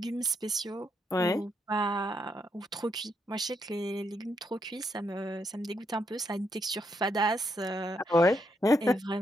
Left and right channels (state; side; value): normal; both; correlation 0.78